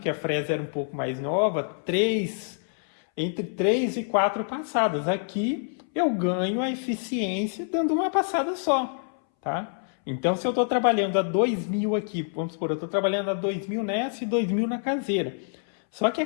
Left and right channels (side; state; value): right; silent; 61 dB below the other